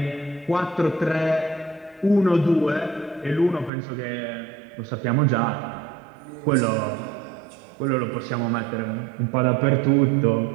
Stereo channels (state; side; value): drops out; left; at 3.7 s